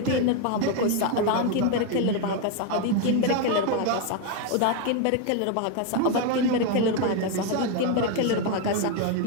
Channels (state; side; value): different; both; correlation 0.01